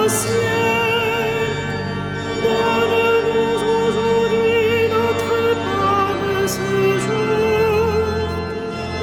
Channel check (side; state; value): both; identical; correlation 1.00